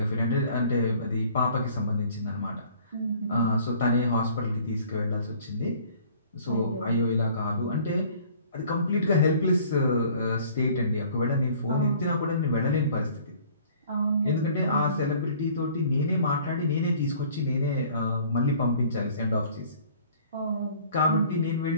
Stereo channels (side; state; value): both; inverted; correlation -0.53